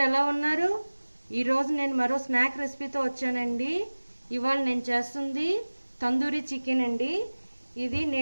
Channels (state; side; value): inverted; both; correlation -1.00